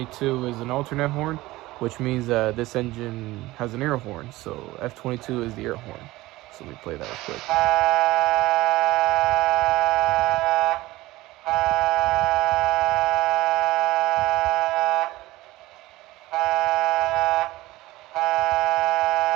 is an alternate horn, which means that this engine has an air horn. So F22 is the air horn. So let me play that real quick.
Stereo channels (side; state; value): left; quieter; 18.5 dB